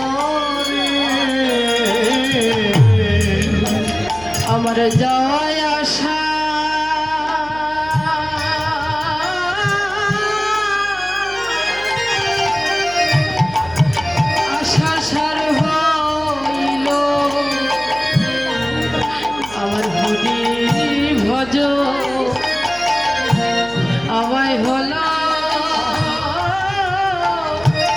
রে। আমার যাওয়ায় আশা আশা সার হইল আমার হরি ভজ আমায় হলো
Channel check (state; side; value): noise; right; hum, 18 dB below the sound